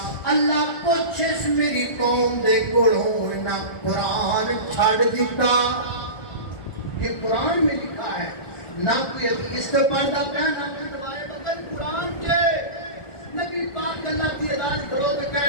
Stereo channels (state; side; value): late; right; 1.4 ms